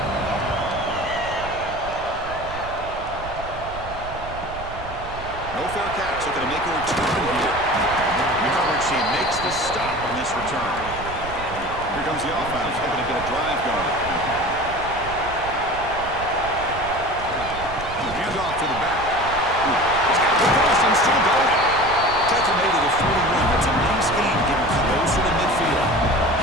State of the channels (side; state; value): right; noise; rumble, 13 dB below the sound